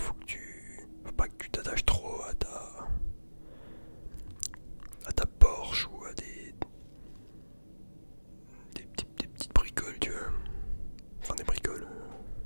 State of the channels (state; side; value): inverted; both; correlation -1.00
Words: pas que tu t'attaches trop à ta Porsche ou à des petites bricoles, tu vois. Enfin, des bricoles.